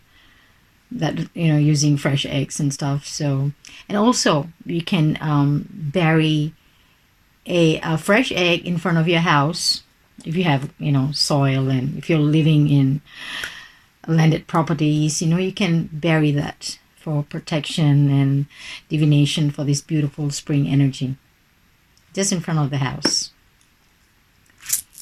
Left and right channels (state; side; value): identical; both; correlation 1.00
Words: that, you know, using fresh eggs and stuff. So, and also you can bury a fresh egg in front of your house if you have, you know, soil, and if you're living in landed properties, you know, you can bury that for protection and divination for this beautiful spring energy, just in front of the house.